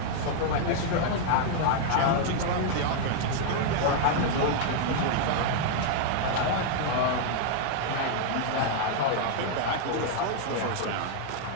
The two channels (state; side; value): different; both; correlation 0.00